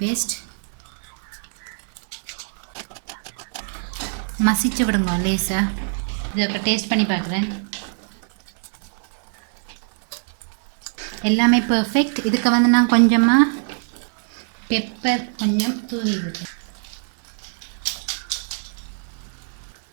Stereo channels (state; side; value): silent; left; 60 dB below the other